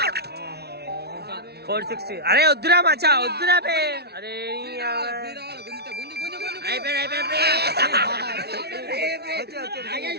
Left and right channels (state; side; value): late; left; 0.48 ms